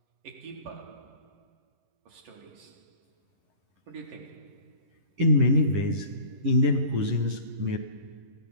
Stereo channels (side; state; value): left; late; 11 ms